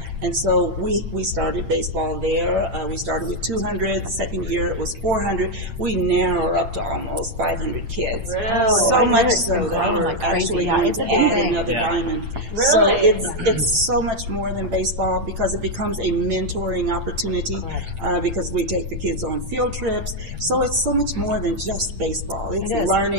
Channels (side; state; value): left; late; 8.8 ms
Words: And so we started baseball there. We started with 200. The second year it was 400. We now are up to almost 500 kids. Really? So much so that we're actually going to add another diamond. So it's so much more than baseball because it becomes a mentoring opportunity because we take the kids on field trips. So it's so much more than just baseball. It's